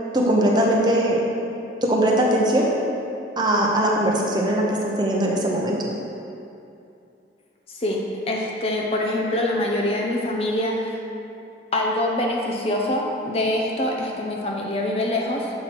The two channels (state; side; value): normal; both; correlation 0.39